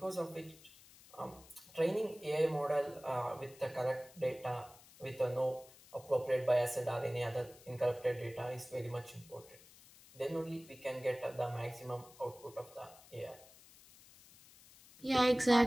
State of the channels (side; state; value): left; noise; hiss, 22 dB below the sound